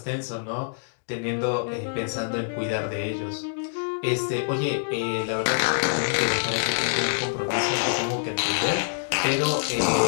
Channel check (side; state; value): right; silent; digital silence